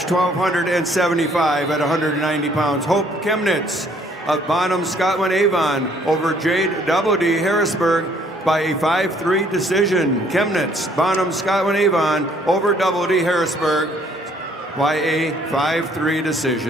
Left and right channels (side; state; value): both; normal; correlation 0.63